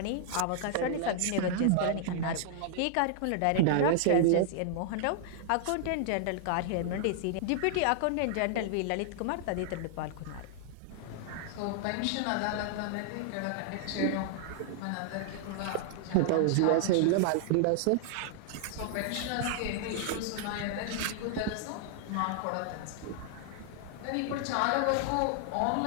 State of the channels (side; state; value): both; different; correlation -0.01